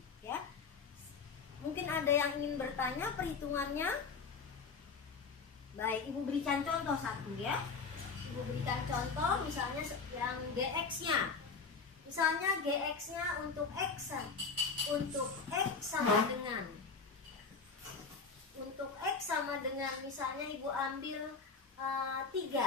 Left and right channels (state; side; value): quieter; right; 5.0 dB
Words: ya. Mungkin ada yang ingin bertanya perhitungannya. Baik, Ibu berikan contoh satu ya. Ibu berikan contoh misalnya yang GX-nya. Misalnya GX-nya untuk X sama dengan misalnya Ibu ambil